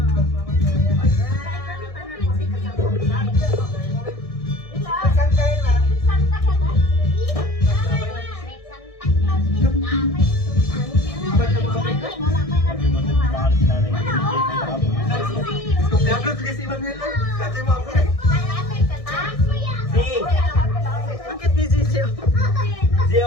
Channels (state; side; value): late; right; 1.6 ms